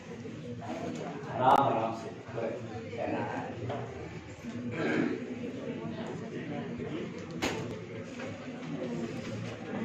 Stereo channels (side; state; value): both; identical; correlation 1.00